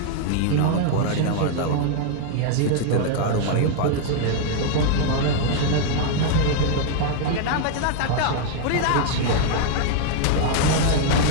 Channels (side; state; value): both; different; correlation 0.00